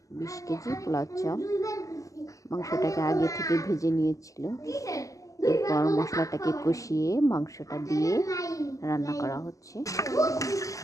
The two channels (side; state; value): right; late; 0.16 ms